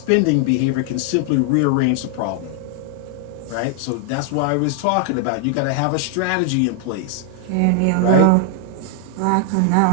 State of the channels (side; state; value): both; different; correlation 0.00